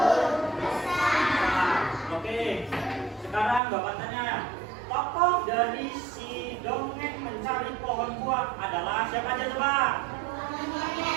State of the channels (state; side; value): drops out; left; at 3.6 s